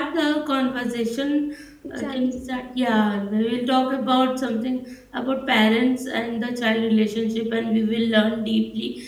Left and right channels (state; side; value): identical; both; correlation 1.00